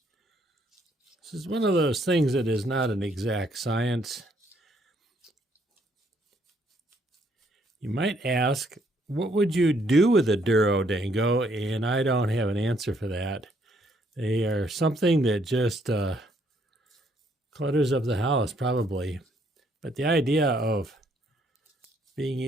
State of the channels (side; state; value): both; normal; correlation 0.69